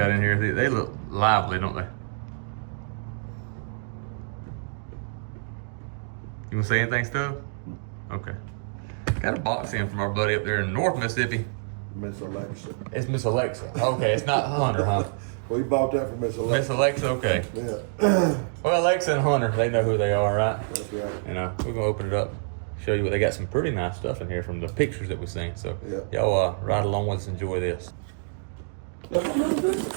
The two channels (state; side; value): silent; left; digital silence